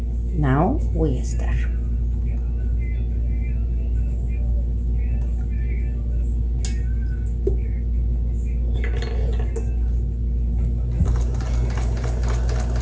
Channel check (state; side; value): identical; both; correlation 1.00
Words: Now we start.